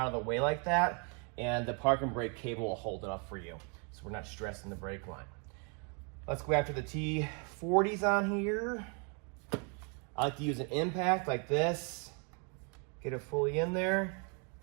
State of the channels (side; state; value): left; quieter; 36.5 dB